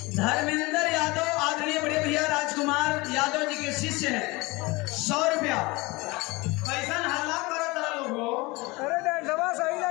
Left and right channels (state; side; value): quieter; right; 23.7 dB